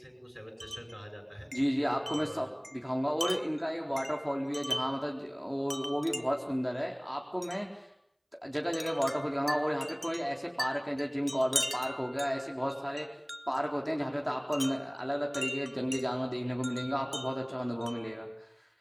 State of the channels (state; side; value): identical; both; correlation 1.00